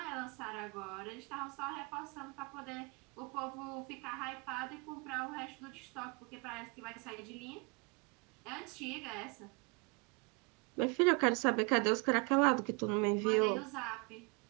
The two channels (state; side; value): quieter; left; 32.0 dB